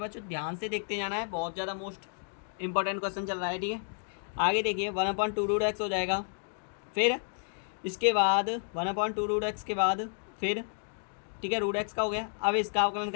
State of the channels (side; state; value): right; silent; 57 dB below the other